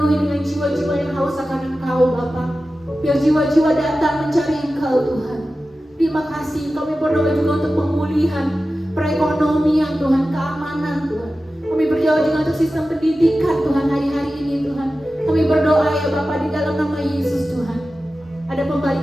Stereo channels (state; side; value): normal; both; correlation 0.94